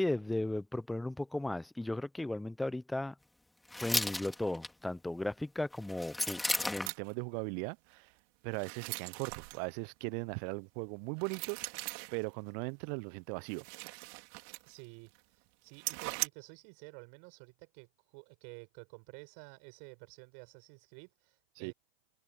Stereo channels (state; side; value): drops out; left; at 6.9 s